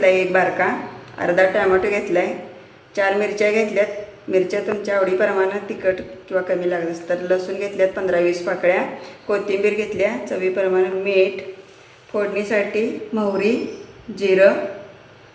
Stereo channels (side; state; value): both; identical; correlation 1.00